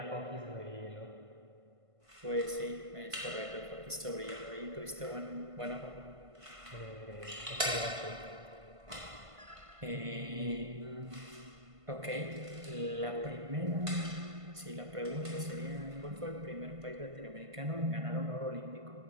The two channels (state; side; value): late; left; 1.5 ms